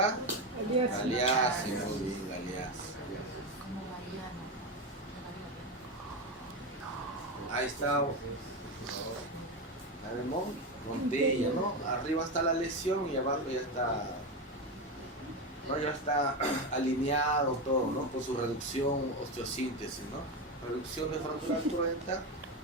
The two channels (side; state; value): both; normal; correlation 0.15